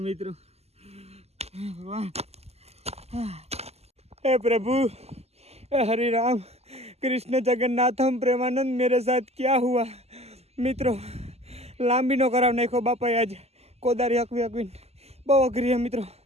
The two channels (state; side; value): late; left; 0.30 ms